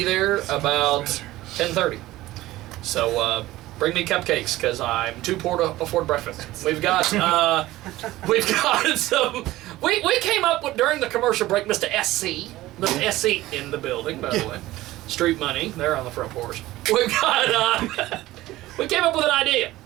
there about 10:30. So bring me cupcakes because I'm too poor to afford breakfast. We've got some. We came up with during the commercial break, Mr. SC in the building, by the way. Street Money, they're on the front porch. We came up with an idea.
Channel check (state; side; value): quieter; left; 16.9 dB